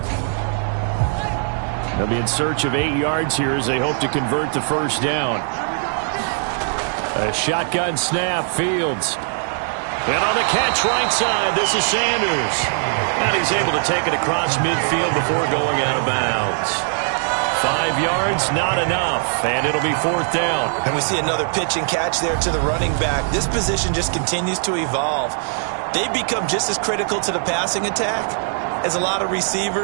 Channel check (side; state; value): left; silent; 65 dB below the other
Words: They'll be in search of 8 yards here as they hope to convert the first down. A shotgun snap, Fields. And on the catch right side, this is Sanders. And he's able to take it across midfield before going out of bounds. 5 yards, not enough, and it'll be 4th down. And we see another pitch and catch there to the running back. This position just continues to evolve. They become just as critical to the passing attack as a lot of